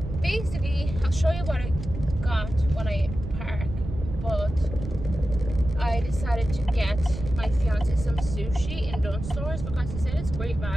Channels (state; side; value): noise; right; rumble, 8 dB below the sound